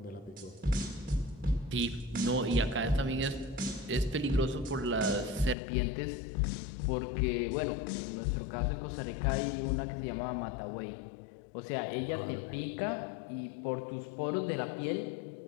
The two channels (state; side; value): drops out; right; at 5.6 s